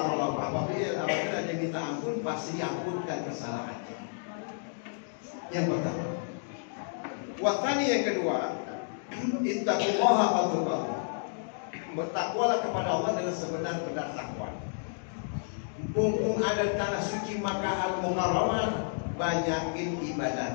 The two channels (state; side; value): silent; right; digital silence